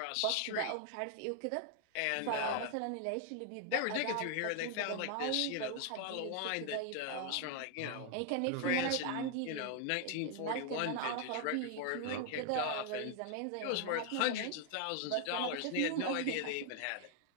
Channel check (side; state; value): both; different; correlation 0.00